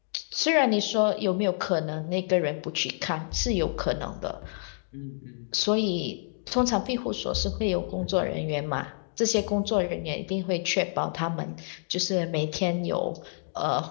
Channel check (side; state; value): right; silent; digital silence